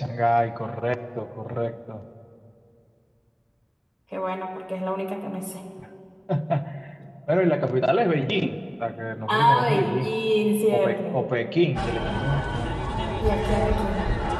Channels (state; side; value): identical; both; correlation 1.00